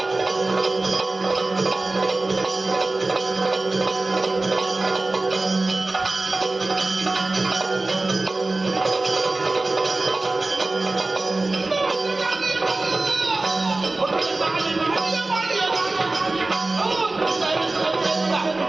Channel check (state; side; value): quieter; left; 3.1 dB